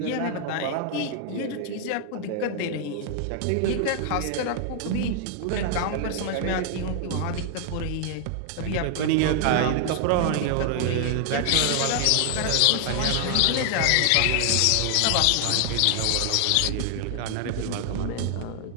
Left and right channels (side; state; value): both; different; correlation 0.00